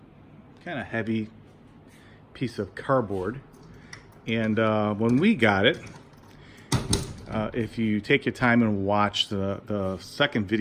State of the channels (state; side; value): identical; both; correlation 1.00